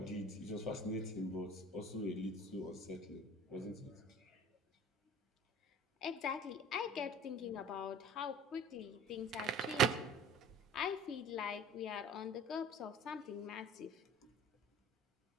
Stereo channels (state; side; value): normal; both; correlation 0.44